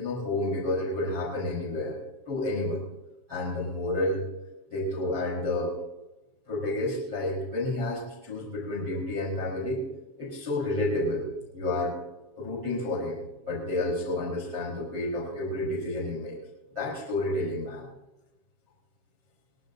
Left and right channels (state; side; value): late; left; 7.3 ms